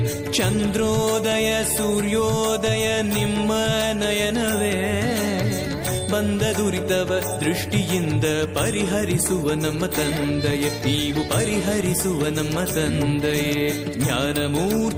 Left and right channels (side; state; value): both; identical; correlation 1.00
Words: ಚಂದ್ರೋದಯ ಸೂರ್ಯೋದಯ ನಿಮ್ಮ ನಯನವೇ ಬಂದ ದುರಿತವ ದೃಷ್ಟಿಯಿಂದ ಪರಿಹರಿಸುವ ನಮ್ಮ ತಂದೆಯೇ ನೀವು ಪರಿಹರಿಸುವ ನಮ್ಮ ತಂದೆಯೇ